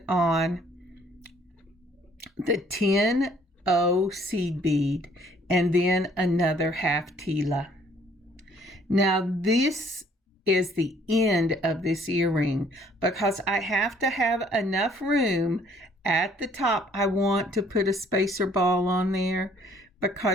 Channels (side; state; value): both; normal; correlation 0.61